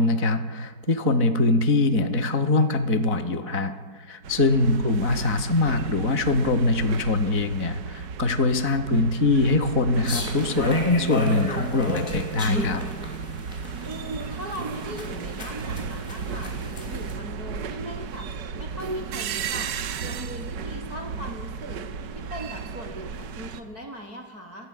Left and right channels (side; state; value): left; late; 4.6 ms